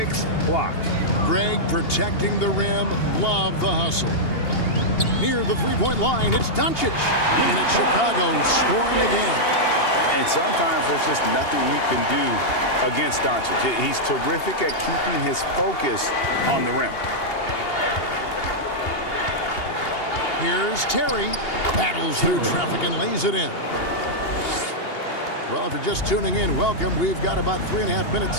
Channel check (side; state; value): right; late; 2.8 ms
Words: blocks. Greg protecting the rim. Love the hustle. Near the three-point line, it's Doncic. And it's Chicago scoring again. And sometimes there's just nothing you can do against Doncic. He's terrific at keeping his focus on the rim. Here's Terry. Battles through traffic and lays it in. Well, if you're just tuning in, welcome. We've got about 3.5